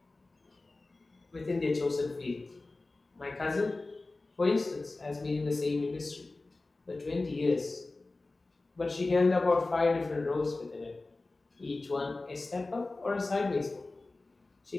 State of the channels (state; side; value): quieter; right; 3.2 dB